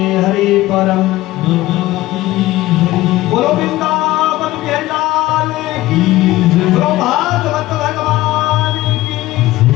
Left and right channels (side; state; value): right; quieter; 16.9 dB